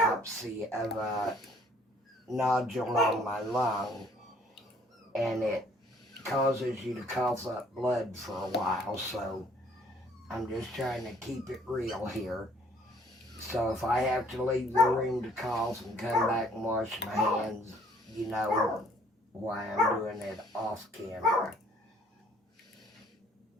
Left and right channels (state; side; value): normal; both; correlation 0.60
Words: of a nodule on my lung, and it causes you to cough up blood for a while. So I'm just trying to keep it real here. So if I have to leave the room to cough and come back and wash my hands, you know why I'm doing it off camera.